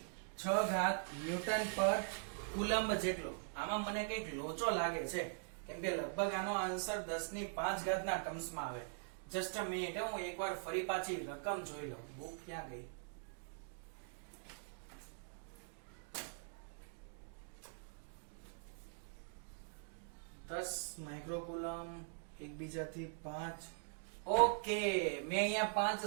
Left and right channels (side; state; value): left; silent; digital silence